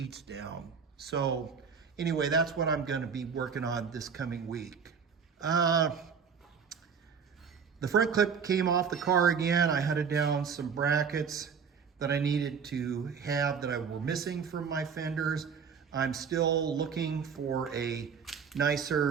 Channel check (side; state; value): left; quieter; 6.4 dB